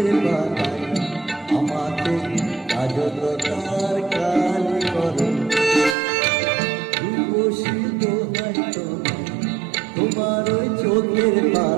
পাতায় আমাকে কাজলতার কালি করো। রূপসী দোহাই তোমার ওই চোখের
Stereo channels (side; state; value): left; drops out; at 6.0 s